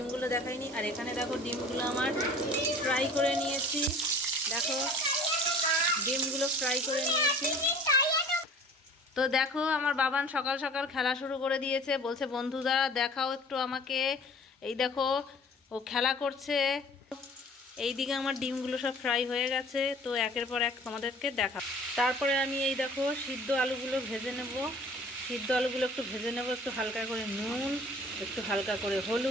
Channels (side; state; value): both; normal; correlation 0.47